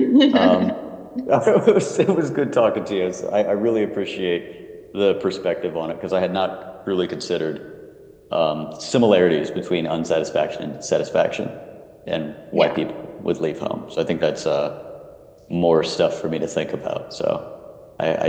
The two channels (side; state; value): both; identical; correlation 1.00